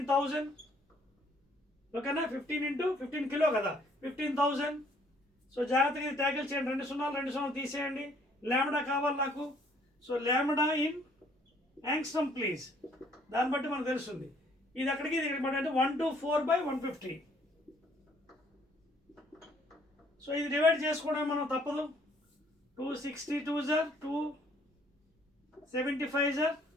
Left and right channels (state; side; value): normal; both; correlation 0.62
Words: ఓకేనా? 15 × 15 కిలో కదా, 15,000. సో జాగ్రత్తగా ఇది ట్యాకిల్ చేయండి. 2 సున్నాలు తీసేయండి. లాంబ్డా కావాలి నాకు. So lambda in angstrom please. దాన్ని బట్టి మనకు తెలుస్తుంది ఇది అక్కడికి ఇది ఇక్కడికి అంటే 124/150. సో ఇది డివైడ్ చేసుకోవడం మనం తప్పదు. 262 సార్ 275 sir.